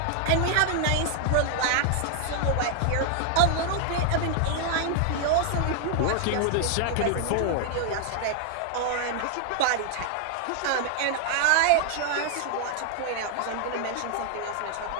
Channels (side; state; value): both; different; correlation 0.00